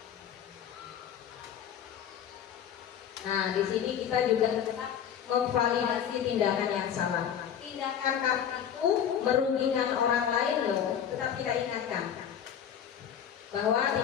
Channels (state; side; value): quieter; right; 8.9 dB